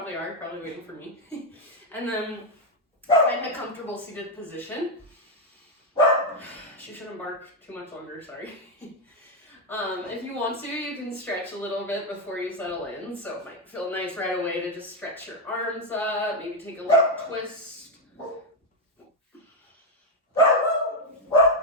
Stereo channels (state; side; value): normal; both; correlation 0.05